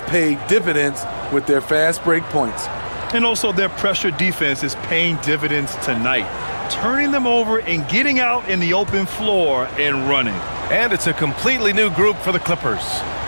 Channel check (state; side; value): inverted; both; correlation -1.00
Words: paid dividends with their fast break points. And also their pressure defense is paying dividends tonight, turning them over and getting out in the open floor and running. And it's a completely new group for the Clippers.